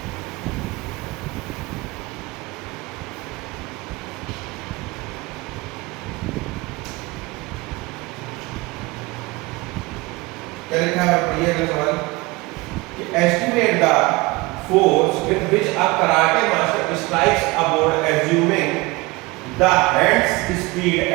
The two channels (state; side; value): quieter; left; 23.3 dB